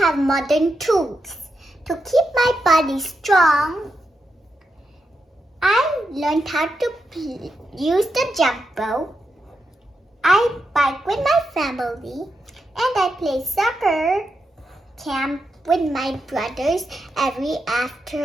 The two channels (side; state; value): both; normal; correlation 0.86